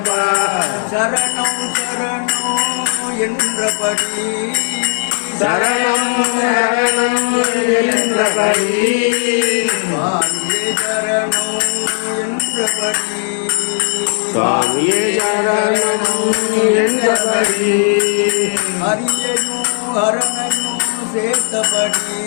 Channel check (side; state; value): right; silent; digital silence